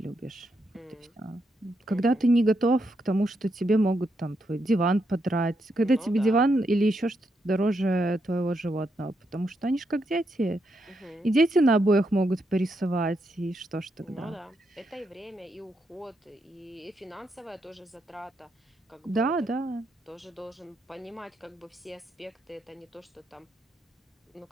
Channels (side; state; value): both; normal; correlation 0.81